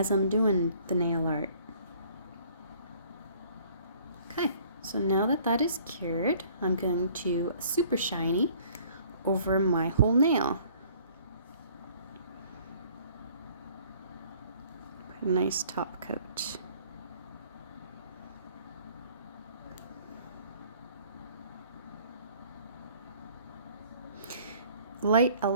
I'm doing the nail art. Okay, so now that that is cured, I'm going to super shiny over my whole nail. Put a nice top coat. Light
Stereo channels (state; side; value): inverted; both; correlation -0.56